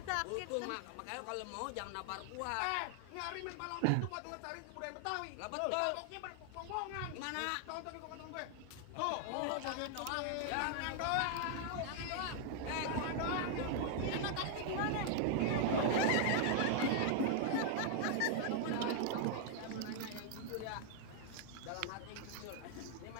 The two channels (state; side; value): different; both; correlation 0.00